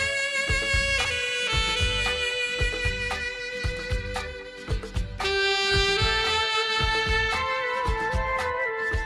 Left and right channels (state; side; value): identical; both; correlation 1.00